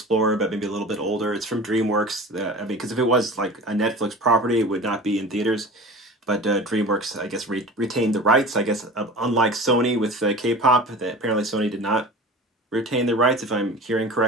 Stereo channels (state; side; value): normal; both; correlation 0.37